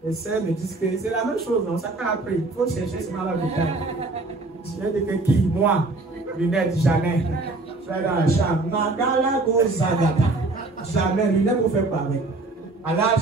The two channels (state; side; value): quieter; left; 3.2 dB